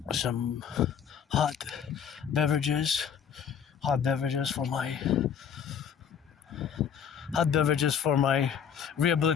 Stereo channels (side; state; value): right; quieter; 7.8 dB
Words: some hot beverages for my hot beverages for my